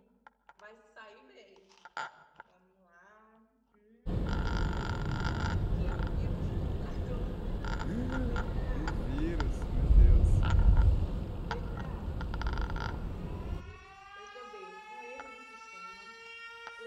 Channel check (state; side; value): identical; both; correlation 1.00